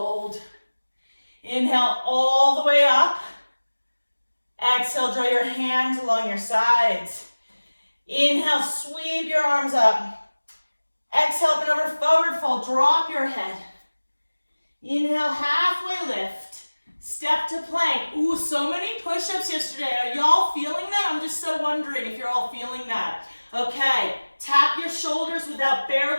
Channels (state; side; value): inverted; both; correlation -1.00